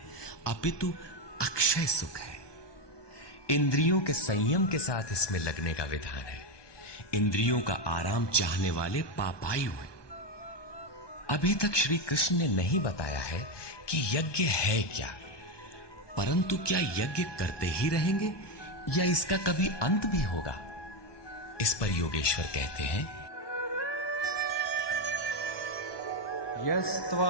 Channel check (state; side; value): late; right; 1.2 ms